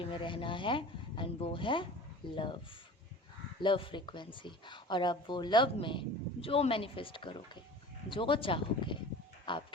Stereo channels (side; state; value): both; normal; correlation 0.39